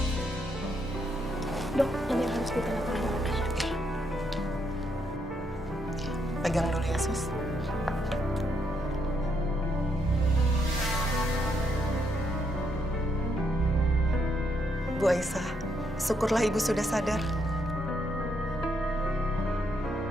Dok, ini harus kita lakukan. Pegang dulu ya, Sus. Bu Aisyah, syukurlah Ibu sudah sadar.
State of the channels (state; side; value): normal; both; correlation 0.76